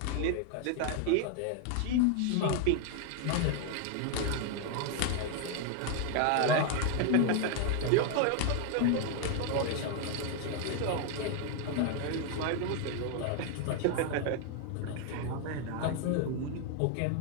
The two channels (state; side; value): different; both; correlation 0.00